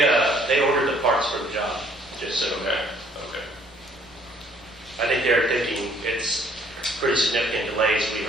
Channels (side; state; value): both; normal; correlation 0.61